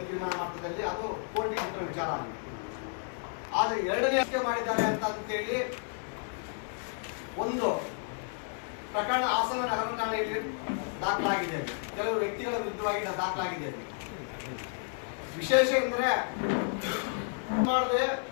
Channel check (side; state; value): right; silent; 55 dB below the other